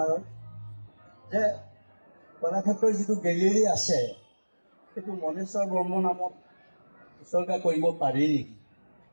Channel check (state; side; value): inverted; both; correlation -1.00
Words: যে কলাক্ষেত্ৰৰ যিটো গেলেৰী আছে সেইটো মনেশ্বৰ বৰ্মন নামত উচৰ্গা কৰিব পাৰি নেকি?